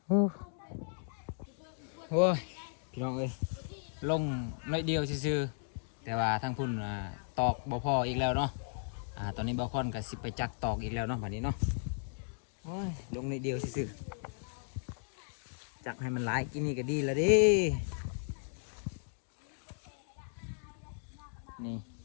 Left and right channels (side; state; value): right; silent; digital silence